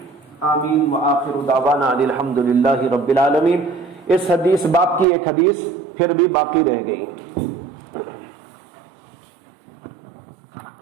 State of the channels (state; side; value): drops out; left; at 5.1 s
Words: آمین۔ وآخر دعوانا الحمدللہ رب العالمین۔ اس حدیث باب کی ایک حدیث پھر بھی باقی رہ گئی۔